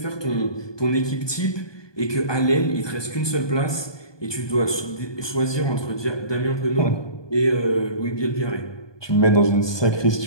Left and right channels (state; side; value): late; right; 1.2 ms